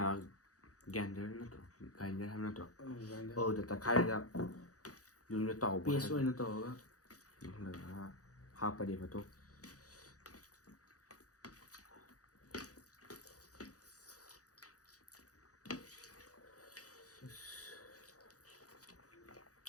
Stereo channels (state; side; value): late; right; 0.66 ms